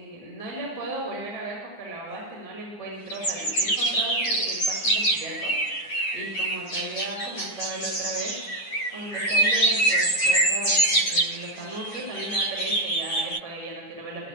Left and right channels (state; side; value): late; right; 9.8 ms